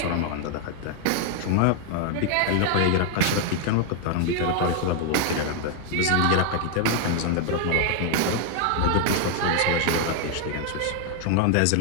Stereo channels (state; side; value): different; both; correlation 0.00